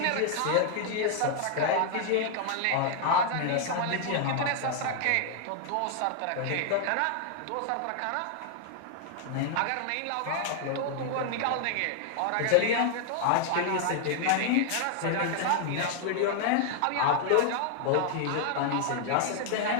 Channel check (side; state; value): both; different; correlation 0.00